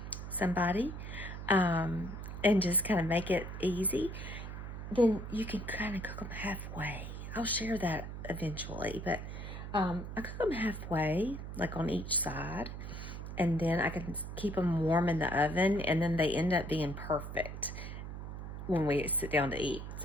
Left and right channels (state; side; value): noise; right; hum, 8 dB below the sound